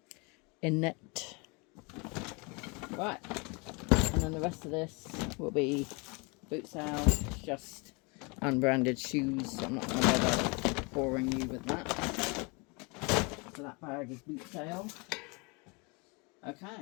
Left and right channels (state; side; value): quieter; right; 29.9 dB